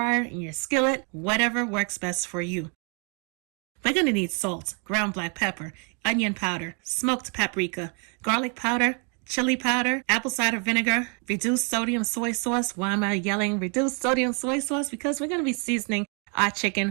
in your skillet, whatever works best for you. We're going to need salt, ground black pepper, onion powder, smoked paprika, garlic powder, chili powder, apple cider vinegar, reduced sodium soy sauce. Why am I yelling reduced sodium soy sauce? Because we're going to be seasoning our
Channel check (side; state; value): left; quieter; 36.7 dB